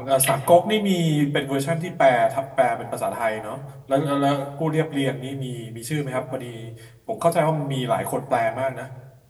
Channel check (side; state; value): both; identical; correlation 1.00